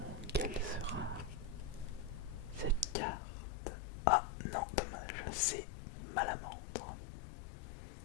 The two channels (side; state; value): right; drops out; at 3.0 s